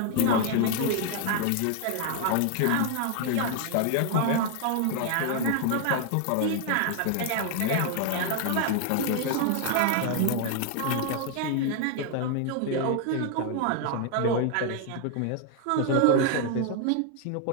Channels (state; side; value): different; both; correlation 0.00